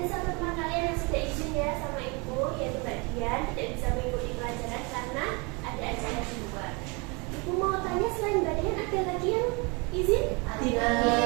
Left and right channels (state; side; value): quieter; left; 29.7 dB